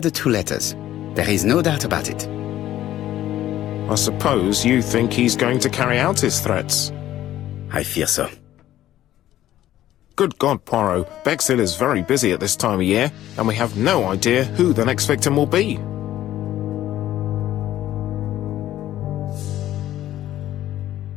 the two letters. There is no doubt about it. I suppose you think he's going to carry out his threats. I fear so. Good God, Poirot, Bexhill is very busy at this time of year, and we have no idea who the next victim will be.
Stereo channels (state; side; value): quieter; right; 13.3 dB